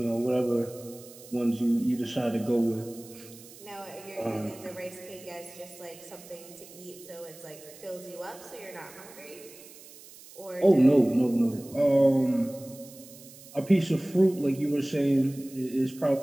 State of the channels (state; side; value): noise; right; hiss, 19 dB below the sound